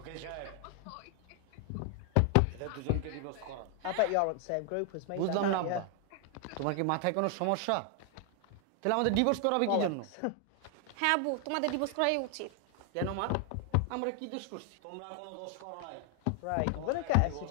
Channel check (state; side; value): different; both; correlation 0.00